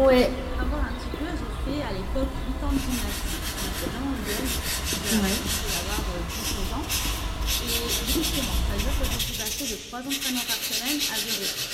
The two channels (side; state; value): both; identical; correlation 1.00